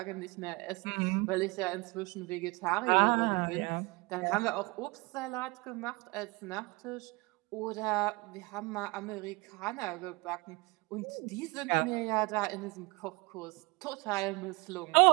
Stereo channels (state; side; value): quieter; left; 26.1 dB